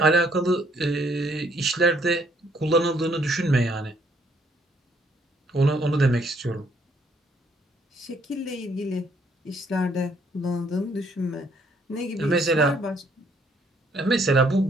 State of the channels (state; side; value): normal; both; correlation 0.67